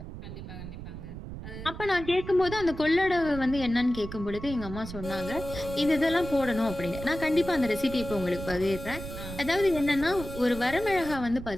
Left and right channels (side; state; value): right; noise; rumble, 10 dB below the sound